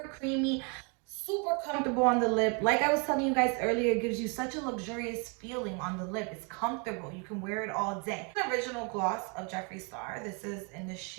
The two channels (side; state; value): left; quieter; 34.6 dB